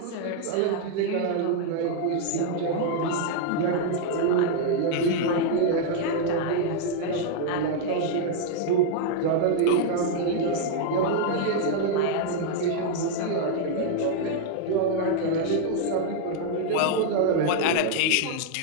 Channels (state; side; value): different; both; correlation 0.00